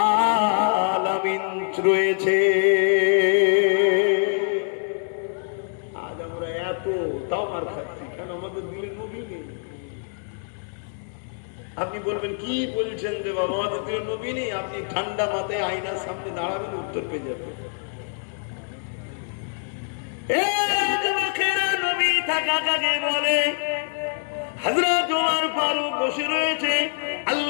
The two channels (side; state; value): right; silent; 62 dB below the other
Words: আলামিন রয়েছে। তাও মার খাচ্ছি, কেন? আমাদের দিলের নবী নেই। আপনি বলবেন, কি বলছেন যে বাবা, আমাদের দিলের নবী নেই? আপনি ঠান্ডা মাথায় আয়নার সামনে দাঁড়াবেন, উত্তর পেয়ে যাবেন। নবী থাকা কাকে বলে? হযরত ওমর ফারুক বসে রয়েছে,